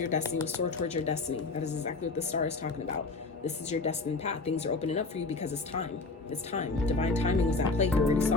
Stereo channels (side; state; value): right; quieter; 3.7 dB